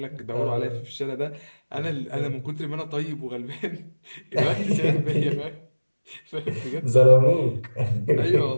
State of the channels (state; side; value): inverted; both; correlation -1.00